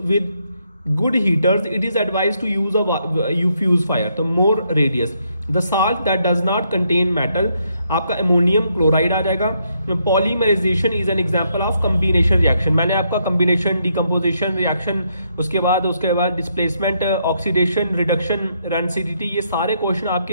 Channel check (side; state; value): both; inverted; correlation -0.75